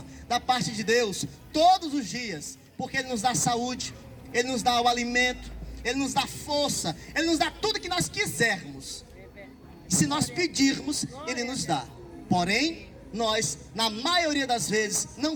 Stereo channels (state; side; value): identical; both; correlation 1.00